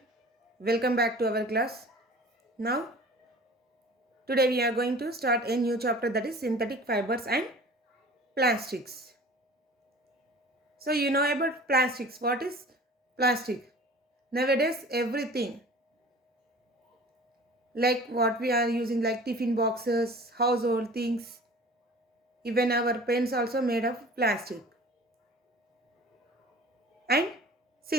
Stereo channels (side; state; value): both; normal; correlation 0.43